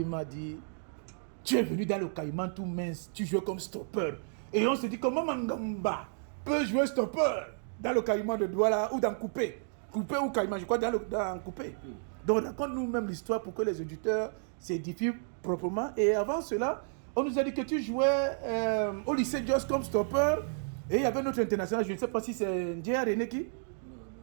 m'a dit, tu es venu dans le Caïman tout mince, tu joues comme stopper. Et on se dit, comment Mangamba peut jouer stopper dans le Caïman de Douala ou dans Coupé? Coupé ou Caïman, je crois dans Coupé. Donc raconte-nous même l'histoire pour que les auditeurs s'édifient proprement. Et avant cela, on nous a dit que tu jouais au lycée Jos comme stopper. Et il y avait notre international, je ne sais pas si c'est Ndjia René qui...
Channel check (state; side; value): silent; left; digital silence